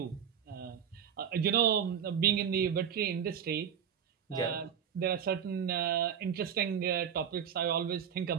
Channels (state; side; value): quieter; left; 8.3 dB